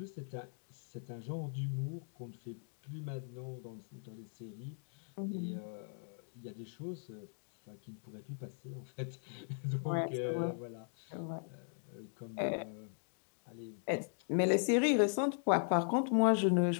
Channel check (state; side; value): silent; right; digital silence